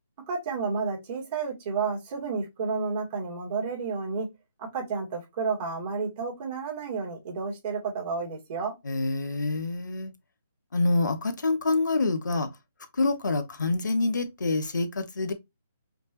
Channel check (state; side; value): inverted; both; correlation -0.70